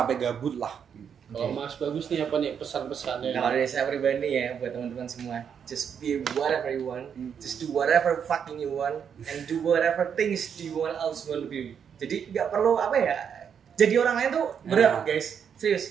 gabut lah. Kalau Mas Bagus nih apa nih pesan-pesannya? Kalau dari saya pribadi ya buat teman-teman semua, just be whatever you want, just do whatever fucking you want, and do whatever things you want else want to be. Jadi nggak perlu apa ya, jadi orang lain tuh berat guys,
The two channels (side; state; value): left; quieter; 7.6 dB